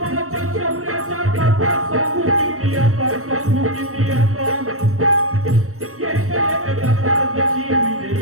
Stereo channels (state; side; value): late; left; 0.63 ms